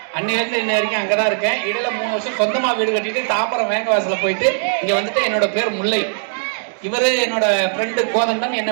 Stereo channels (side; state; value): left; silent; digital silence